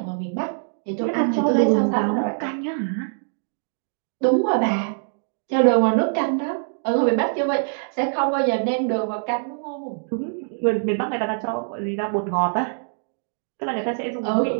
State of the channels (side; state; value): left; silent; digital silence